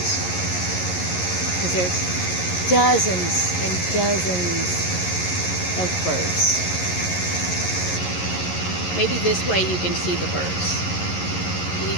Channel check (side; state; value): right; late; 11 ms